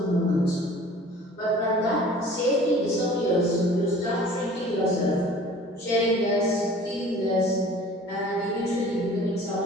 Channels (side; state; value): both; normal; correlation 0.47